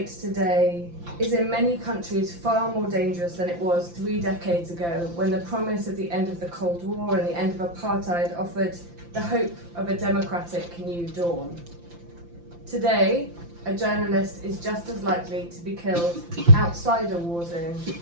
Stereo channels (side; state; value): left; late; 5.8 ms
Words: today is in many countries far more dangerous than it was 3 decades ago, when the promise of the end of the Cold War and the end of apartheid offered the hope of a democratic new dawn. Today, a journalist is just as likely to be killed outside a war zone